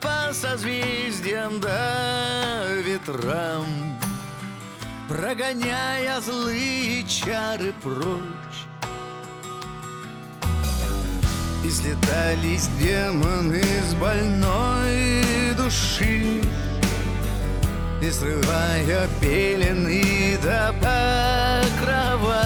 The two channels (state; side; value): identical; both; correlation 1.00